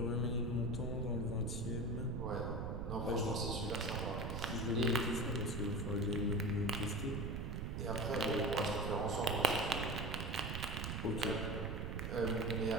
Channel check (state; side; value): noise; right; rumble, 3 dB below the sound